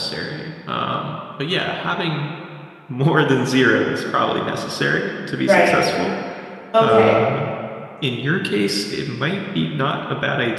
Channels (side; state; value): both; identical; correlation 1.00